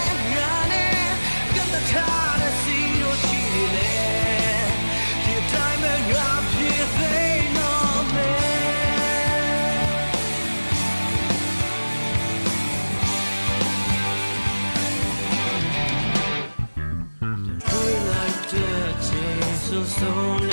ငါနဲ့ကတည်းကထားစီလို့ရှိနေလေဒီအတိုင်းပဲငါဖြစ်သိတော့မယ်တွေ့လိုက်တဲ့ချိန်ဆိုဆုံးန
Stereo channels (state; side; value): inverted; both; correlation -1.00